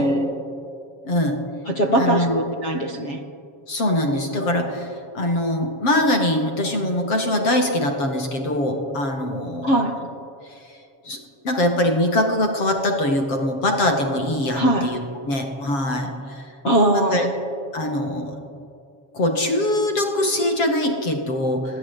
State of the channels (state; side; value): late; right; 7.3 ms